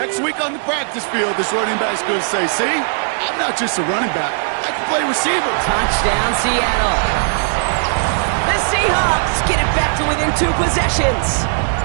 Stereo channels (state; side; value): silent; left; digital silence